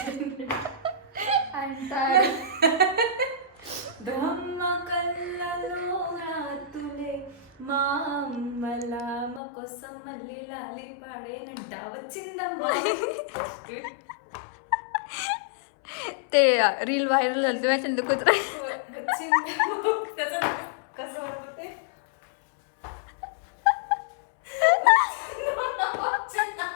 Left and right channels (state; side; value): drops out; right; at 9.4 s